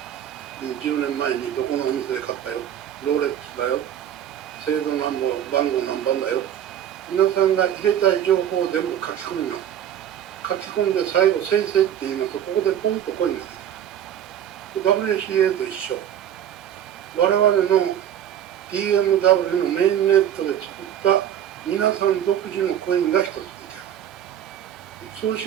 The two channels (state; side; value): quieter; left; 10.2 dB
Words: 10年前にどこのお店で買ったよ、ローレックスだよ、製造番号何番だよ、皆さんが入れたい情報を全部書き込みます。書き込んで最後生成って言いますと、ここでポンとコインができます。WCA と一緒。我々の DMW のメインネットで作った皆さん独自のコインが一つ出来上がる。そう